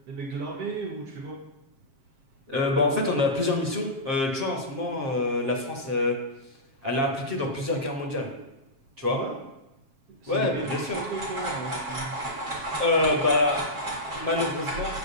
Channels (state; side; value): late; left; 7.5 ms